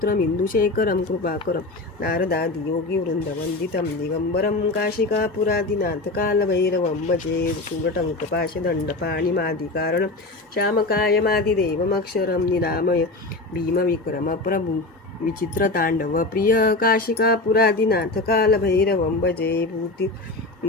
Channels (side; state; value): right; quieter; 3.1 dB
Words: इंदुशेखरं कृपाकरं नारदादि योगी वृंदवंदितं दिगंबरं काशिकापुरादिनाथ कालभैरवं भजे शूलटंक पाशदंड पाणिमादिकारणं श्यामकायमादिदेवमक्षरं निरामय भीमविक्रम प्रभु विचित्र तांडव प्रिय काशिकापुरादिनाथ कालभैरवं भजे भूति